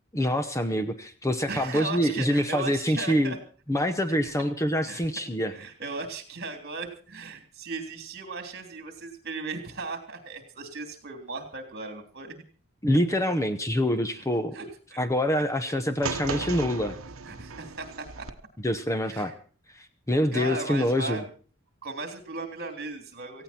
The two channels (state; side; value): normal; both; correlation 0.64